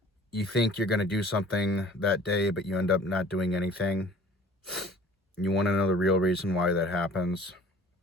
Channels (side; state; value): both; normal; correlation 0.49